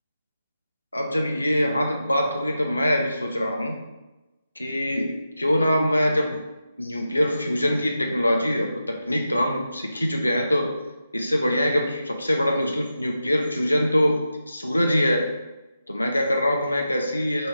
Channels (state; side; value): inverted; both; correlation -0.89